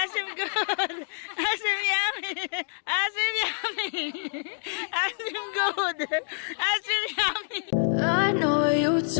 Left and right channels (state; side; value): silent; right; digital silence